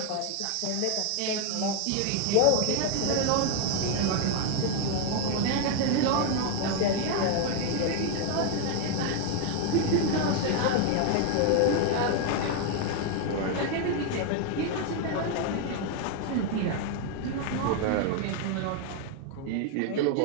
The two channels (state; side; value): different; both; correlation 0.01